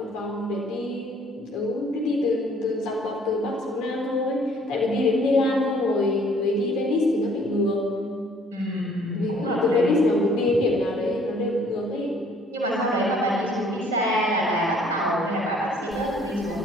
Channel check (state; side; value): normal; both; correlation 0.59